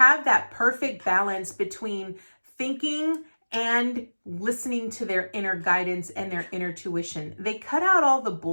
that perfect balance between thinking and listening to their inner guidance and their inner tuition. They cut out all the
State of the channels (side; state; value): both; inverted; correlation -1.00